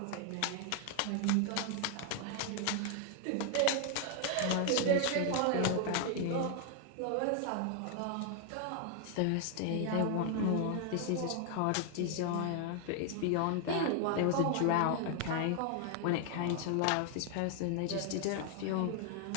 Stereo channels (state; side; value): different; both; correlation 0.00